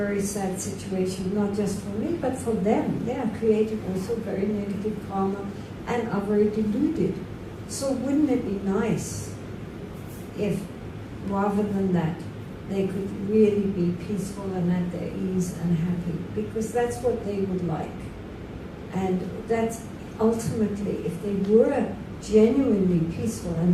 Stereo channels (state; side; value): identical; both; correlation 1.00